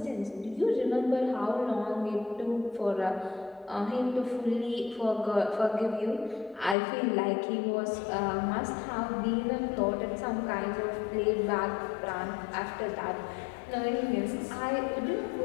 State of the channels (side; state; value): right; drops out; at 6.8 s